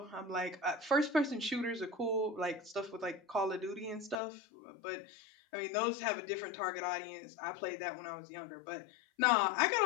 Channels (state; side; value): drops out; right; at 4.2 s